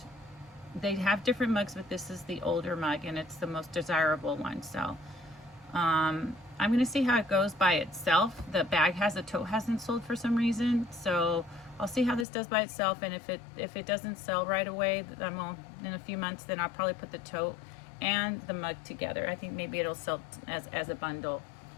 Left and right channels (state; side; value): drops out; right; at 12.2 s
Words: they have different mugs, but this is the older mug and it's the most desirable one. So I'm gonna see how it goes by itself. The bag the tote hasn't sold for some reason, so I'll see how this does by itself. And if it doesn't sell right away, in a few months, then I'll probably put the tote and the mug together. I think maybe it'll sell as a bundle,